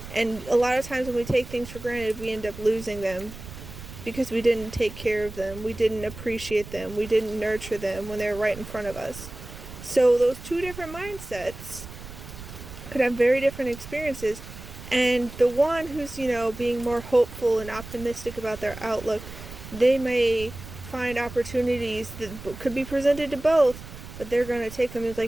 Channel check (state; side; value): noise; right; rumble, 14 dB below the sound